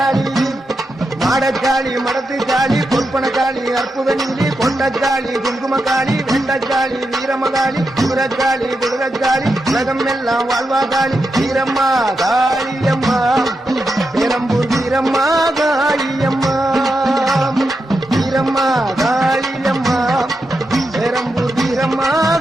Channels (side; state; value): both; normal; correlation 0.86